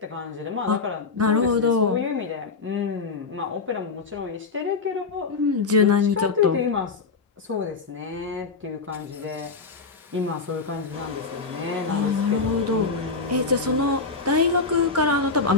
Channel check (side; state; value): right; quieter; 4.4 dB